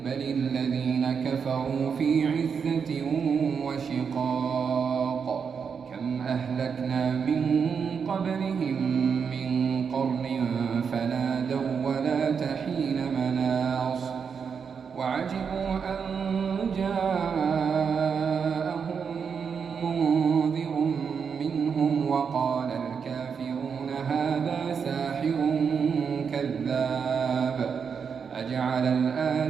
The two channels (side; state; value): left; quieter; 6.3 dB